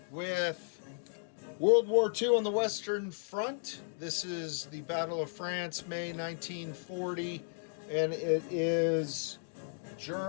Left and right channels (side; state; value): right; silent; digital silence